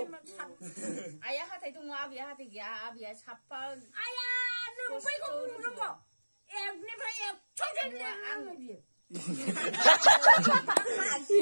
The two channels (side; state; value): both; inverted; correlation -1.00